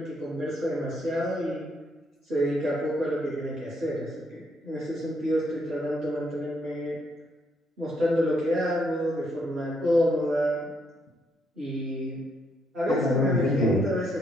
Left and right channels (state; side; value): normal; both; correlation 0.74